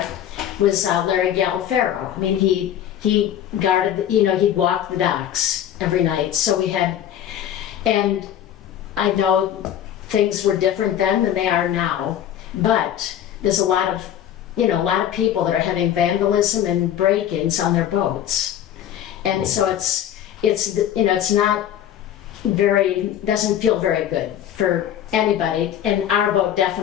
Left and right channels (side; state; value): right; quieter; 10.6 dB